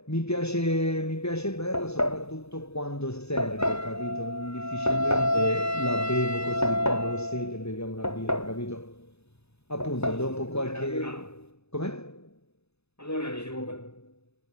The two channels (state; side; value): late; right; 0.79 ms